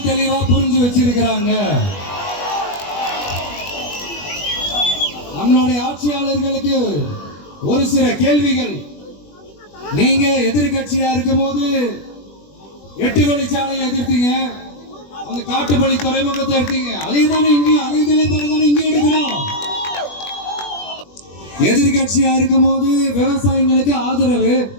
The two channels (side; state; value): right; late; 21 ms